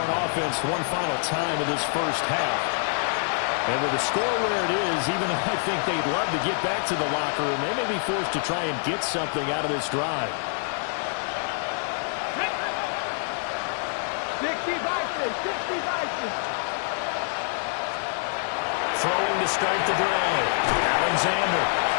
offense one final time in this first half. And with the score where it is, even though I think they'd love to get back to the locker room, they may be forced to try and get something out of this drive. 60 Vikings, 60 Vikings. Throwing to start the drive. Alexander.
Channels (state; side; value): silent; right; digital silence